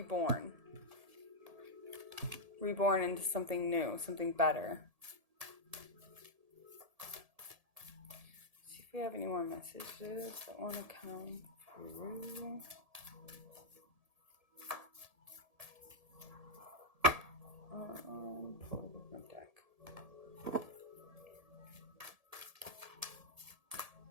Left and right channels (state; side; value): late; left; 1.7 ms